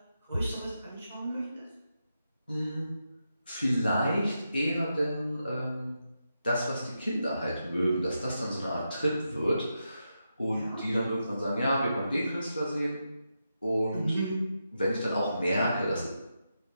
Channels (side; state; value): both; inverted; correlation -0.87